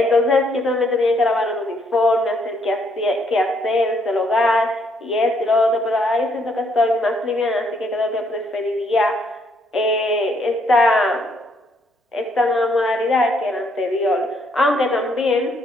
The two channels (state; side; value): normal; both; correlation 0.71